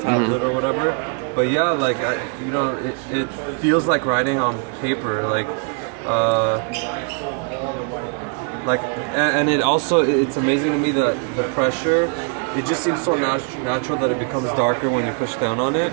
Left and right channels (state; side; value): quieter; left; 38.8 dB